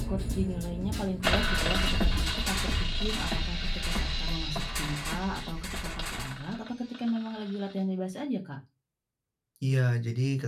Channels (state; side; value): identical; both; correlation 1.00